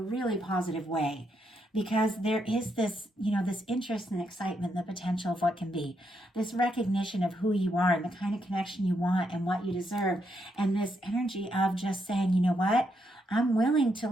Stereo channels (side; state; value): both; normal; correlation 0.79